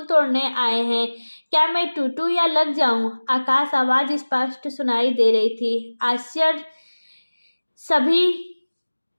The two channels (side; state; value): both; inverted; correlation -1.00